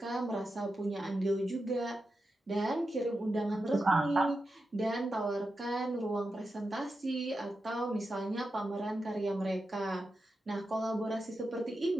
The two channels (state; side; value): normal; both; correlation 0.89